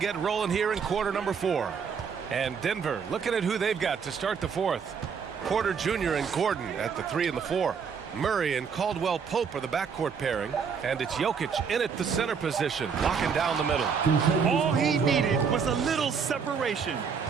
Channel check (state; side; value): quieter; left; 6.3 dB